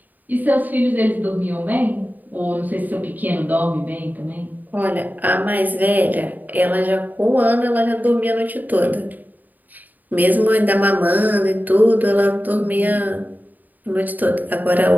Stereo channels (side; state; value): left; late; 0.084 ms